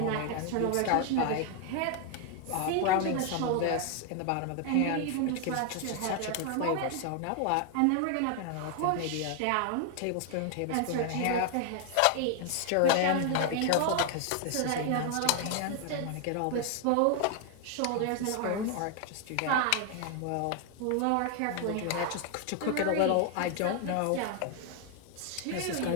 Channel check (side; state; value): both; different; correlation 0.00